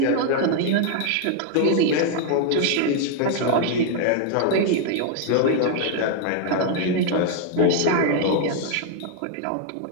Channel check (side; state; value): both; different; correlation 0.00